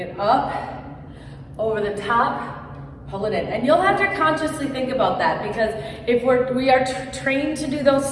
up, over the top, pull it in. And you'll have to consciously think about that, because if we are trained to do those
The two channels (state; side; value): identical; both; correlation 1.00